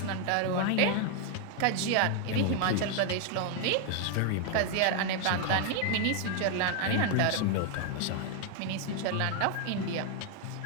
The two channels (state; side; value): different; both; correlation 0.00